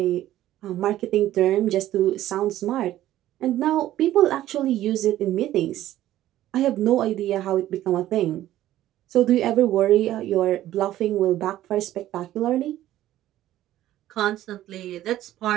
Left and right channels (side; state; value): left; quieter; 13.7 dB